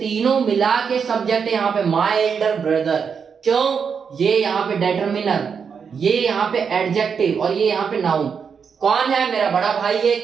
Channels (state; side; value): quieter; left; 6.4 dB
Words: मिला के सब्जेक्ट है यहाँ पे, माय एल्डर ब्रदर। क्यों? ये यहाँ पे डिटरमिनर, ये यहाँ पे एडजेक्टिव और ये यहाँ पे नाउन। कौन है? मेरा बड़ा भाई है।